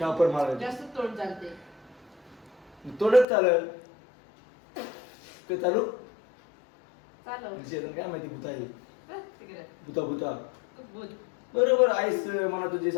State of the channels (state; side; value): drops out; right; at 3.2 s